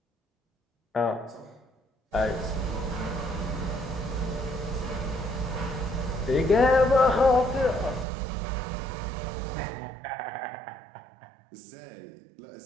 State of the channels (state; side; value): drops out; left; at 8.1 s